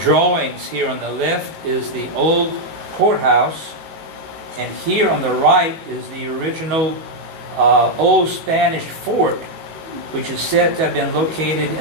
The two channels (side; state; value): left; late; 19 ms